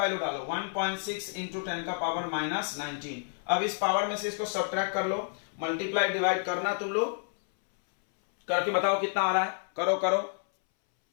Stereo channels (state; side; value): silent; right; 58 dB below the other